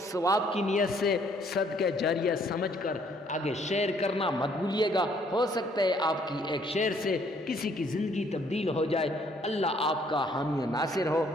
ثواب کی نیت سے صدقہ جاریہ سمجھ کر آگے شیئر کرنا مت بھولیے گا، ہو سکتا ہے آپ کی ایک شیئر سے کسی کی زندگی تبدیل ہو جائے۔ اللہ آپ کا حامی و ناصر ہو۔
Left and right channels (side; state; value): both; normal; correlation 0.65